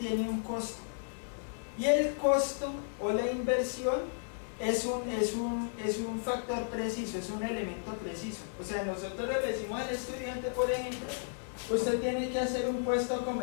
un costo. Y el costo o la inversión es un factor preciso, es un elemento preciso. O sea, nosotros le decimos al estudiante, por ejemplo, usted tiene que hacer un puesto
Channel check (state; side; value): silent; right; digital silence